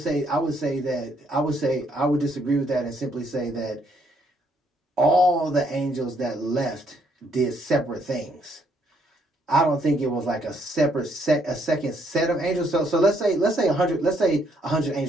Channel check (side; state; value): both; normal; correlation 0.70